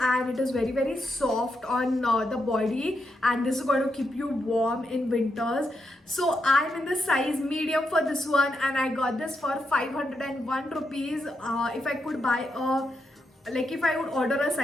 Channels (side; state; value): both; normal; correlation 0.83